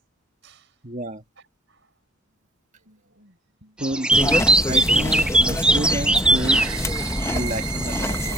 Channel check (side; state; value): both; normal; correlation 0.55